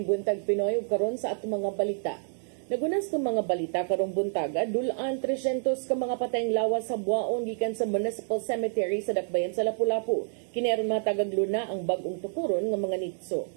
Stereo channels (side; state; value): left; silent; digital silence